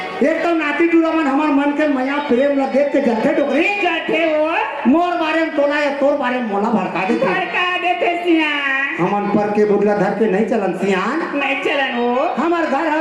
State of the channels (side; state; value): both; identical; correlation 1.00